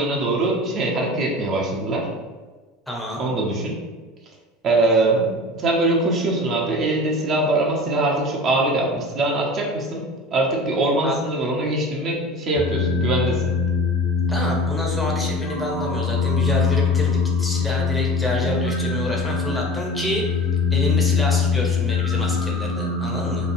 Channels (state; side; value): normal; both; correlation 0.37